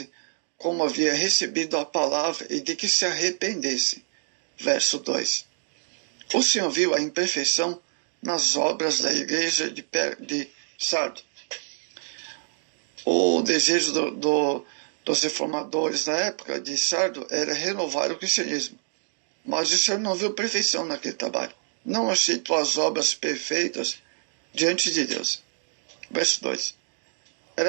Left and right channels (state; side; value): silent; left; digital silence